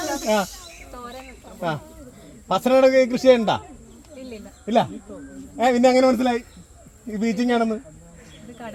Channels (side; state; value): both; identical; correlation 1.00